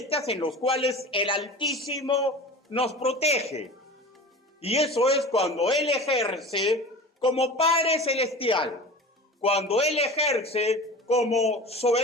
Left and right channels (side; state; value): both; normal; correlation 0.35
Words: en las cuales el Altísimo nos protege. Y eso es cuando Él ejerce como Padre Celestial, cuando Él ejerce como